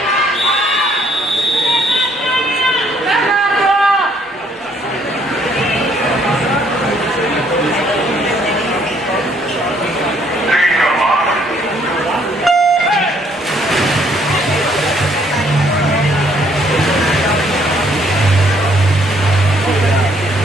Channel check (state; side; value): normal; both; correlation 0.66